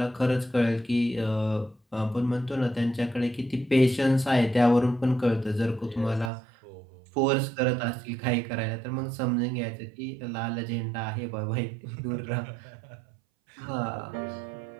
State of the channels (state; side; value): drops out; left; at 6.3 s